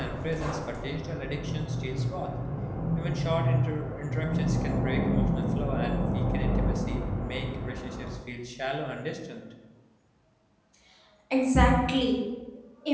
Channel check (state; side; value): identical; both; correlation 1.00